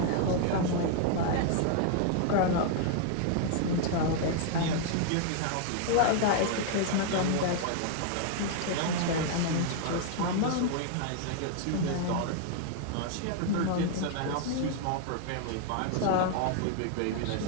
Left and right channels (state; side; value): different; both; correlation 0.00